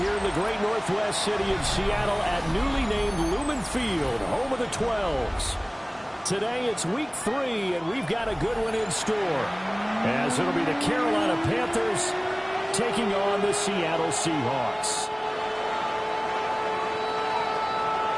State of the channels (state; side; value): identical; both; correlation 1.00